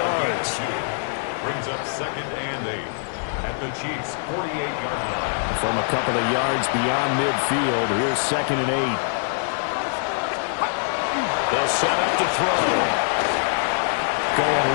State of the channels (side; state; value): right; silent; digital silence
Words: Brings up 2nd and 8 at the Chiefs' 48-yard line. From a couple of yards beyond midfield, here's 2nd and 8. They'll set up to throw. Going